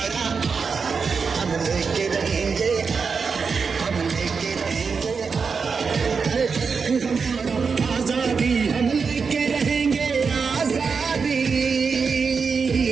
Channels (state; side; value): quieter; left; 5.3 dB